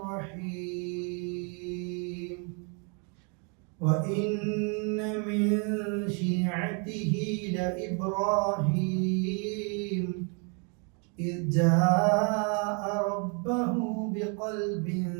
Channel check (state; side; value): quieter; left; 36.9 dB